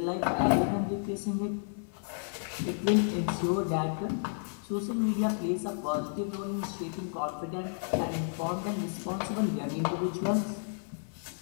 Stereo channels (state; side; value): silent; right; digital silence